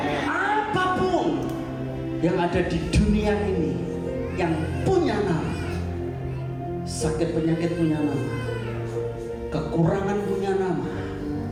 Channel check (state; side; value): identical; both; correlation 1.00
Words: Apapun yang ada di dunia ini yang punya nama, sakit penyakit punya nama, kekurangan punya nama,